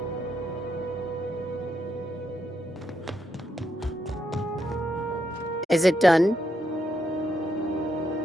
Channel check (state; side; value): normal; both; correlation 0.79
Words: Is it done?